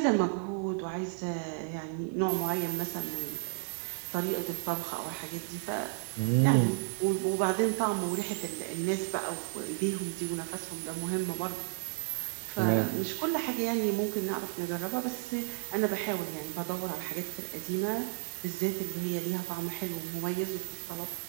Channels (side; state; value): left; silent; digital silence